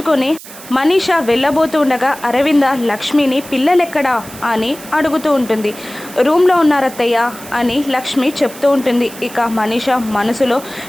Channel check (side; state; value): right; noise; hiss, 16 dB below the sound